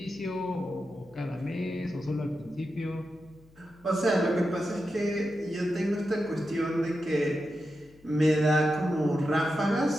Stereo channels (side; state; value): left; noise; hum, 27 dB below the sound